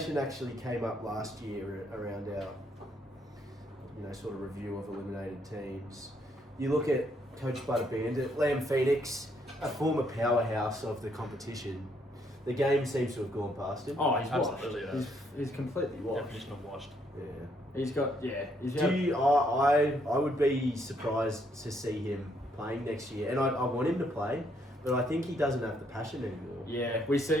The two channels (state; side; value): normal; both; correlation 0.71